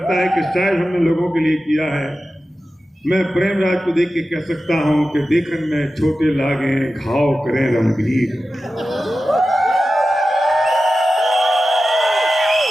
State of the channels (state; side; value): normal; both; correlation 0.93